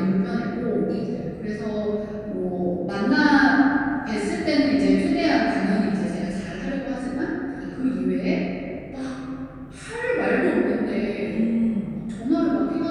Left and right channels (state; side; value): identical; both; correlation 1.00